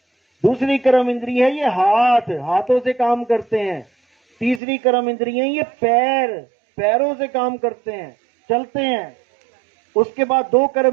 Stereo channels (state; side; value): drops out; left; at 4.6 s